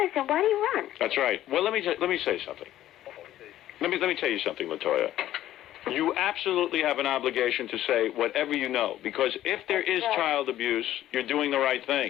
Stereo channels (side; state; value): right; quieter; 13.3 dB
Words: why do you run? That's right. Well, let me say something. Let me tell you something, Latoya. You absolutely have an obligation to say whatever you know, because if there is child abuse, you're doing the right